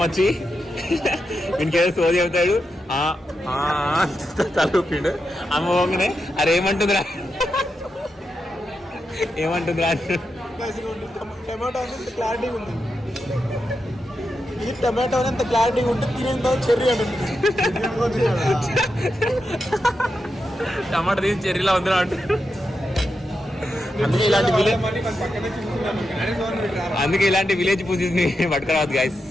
వచ్చి ఇంకేదో సోది చెబుతాడు, తలూపిండు. అమ్మ పోగానే అరే ఏమంటుందిరా టమాటో అంత క్లారిటీ ఉంది. ఇది టమాటో అంత క్లారిటీ ఉంటే తినేంత చెర్రీ అంటుంది. టమాటో తీసి చెర్రీలా ఉందిరా అంటే. అందుకే ఇలాంటి విలేజ్ పూజెస్ ని పట్టుకురావద్దు గాయస్.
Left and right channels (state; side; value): normal; both; correlation 0.87